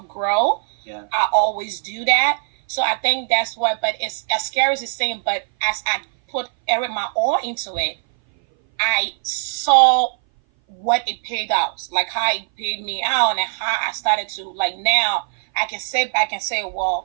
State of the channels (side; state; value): left; silent; 59 dB below the other